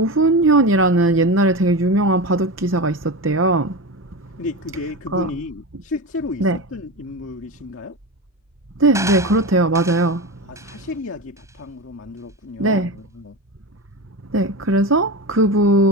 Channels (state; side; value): normal; both; correlation 0.22